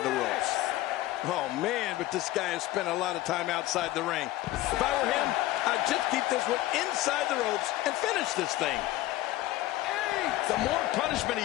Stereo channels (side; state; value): right; quieter; 16.2 dB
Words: the ropes. Oh, man, but this guy has spent a lot of time outside the ring. If I were him, I'd just keep this one inside the ropes and finish this thing. The more punishment he